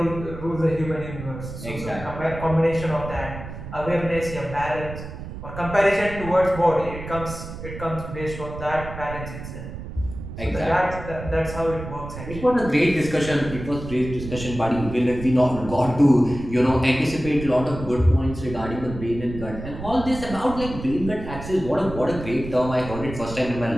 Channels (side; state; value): right; noise; rumble, 10 dB below the sound